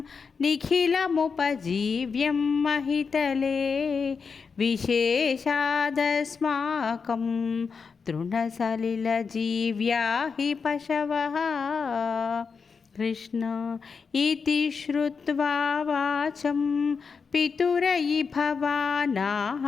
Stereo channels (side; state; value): right; quieter; 5.4 dB